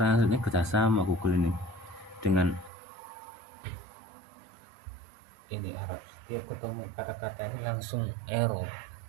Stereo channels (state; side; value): drops out; left; at 2.7 s